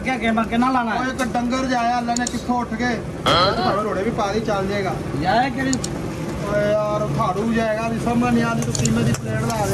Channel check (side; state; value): both; identical; correlation 1.00